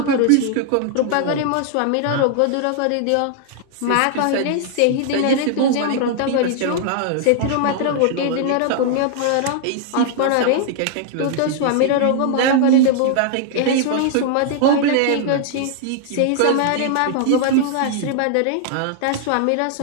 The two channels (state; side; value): different; both; correlation -0.01